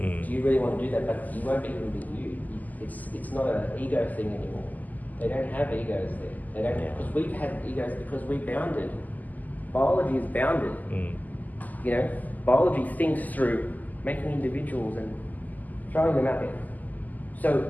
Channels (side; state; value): right; late; 0.081 ms